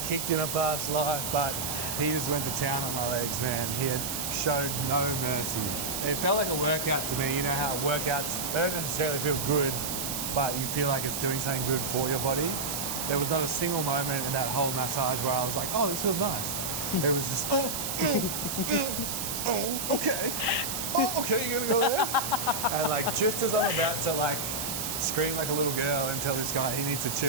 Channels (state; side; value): noise; right; hiss, 3 dB below the sound